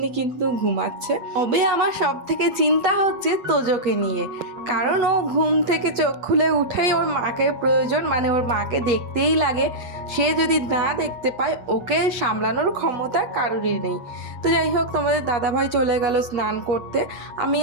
কিন্তু ঘুমাচ্ছে। তবে আমার সব থেকে চিন্তা হচ্ছে তোজোকে নিয়ে, কারণ ও ঘুম থেকে চোখ খুলে উঠেই ওর মাকে প্রয়োজন, মানে ওর মাকে দেখতেই লাগে। সে যদি না দেখতে পায় ওকে সামলানোর ক্ষমতা কারোরই নেই। তো যাই হোক, তোমাদের দাদাভাই চলে গেল স্নান করতে। আমি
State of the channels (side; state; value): left; late; 8.1 ms